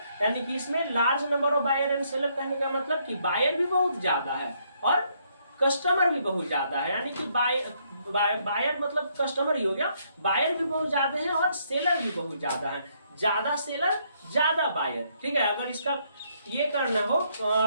यानी कि इसमें large number of buyer and seller कहने का मतलब कि बायर भी बहुत ज्यादा है और कस्टमर भी बहुत ज्यादा है। यानी कि बायर मतलब कस्टमर ही हो गया, बायर भी बहुत ज्यादा है और सेलर भी बहुत ज्यादा है। ज्यादा सेलर ज्यादा बायर। ठीक है, अगर इसका ये करना हो,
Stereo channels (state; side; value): inverted; both; correlation -0.71